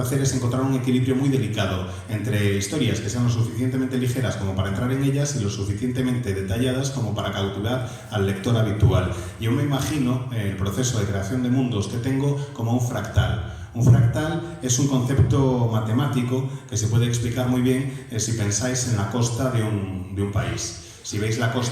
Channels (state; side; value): identical; both; correlation 1.00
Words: hacer es encontrar un equilibrio muy delicado entre historias que sean lo suficientemente ligeras como para entrar en ellas y lo suficientemente detalladas como para cautivar al lector habitual. Yo me imagino el proceso de creación de mundos que tengo como un fractal. Un fractal es un concepto matemático que se puede explicar muy bien si pensáis en la costa de un país. Si veis la